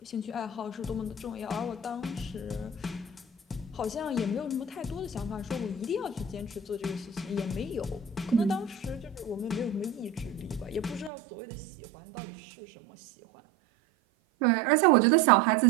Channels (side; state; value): left; drops out; at 11.1 s